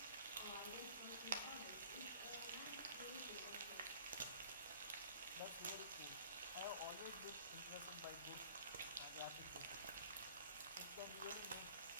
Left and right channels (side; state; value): both; inverted; correlation -0.48